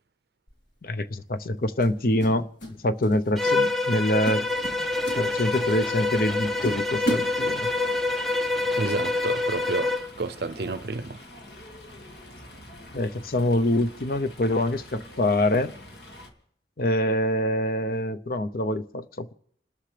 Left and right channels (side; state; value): both; normal; correlation 0.49